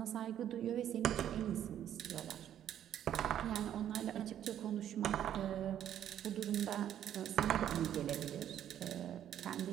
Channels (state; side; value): quieter; left; 10.6 dB